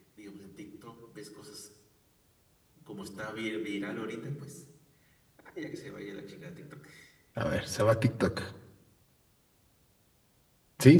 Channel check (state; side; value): identical; both; correlation 1.00